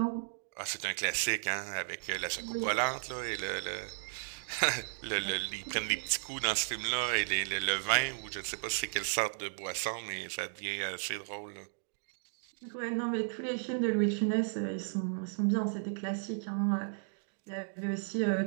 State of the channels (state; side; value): silent; left; digital silence